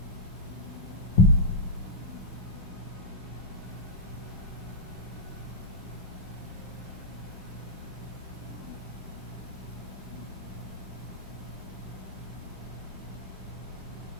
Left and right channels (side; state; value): both; normal; correlation -0.06